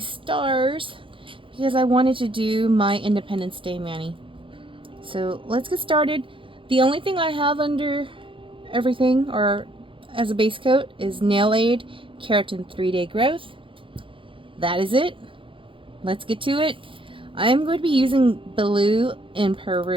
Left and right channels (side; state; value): left; late; 0.25 ms